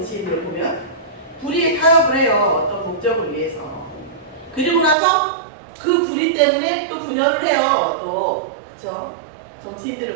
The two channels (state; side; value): drops out; left; at 5.0 s